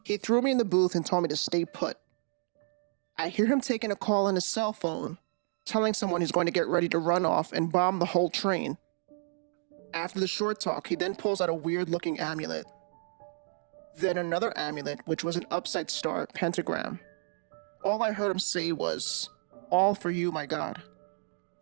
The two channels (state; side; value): silent; left; digital silence